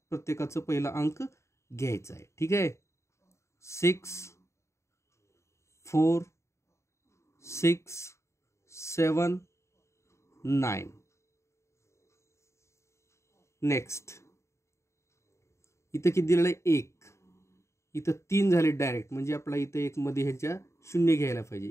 प्रत्येकाचं पहिला अंक घ्यायचा आहे. ठीक आहे. 6 4 6 7 9. नेक्स्ट इथं किती दिलेलं आहे, 1. इथं 3 झाले डायरेक्ट, म्हणजे आपला इथं 1 मध्ये ह्याच्या 0 घ्यायला पाहिजे.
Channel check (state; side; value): late; right; 0.14 ms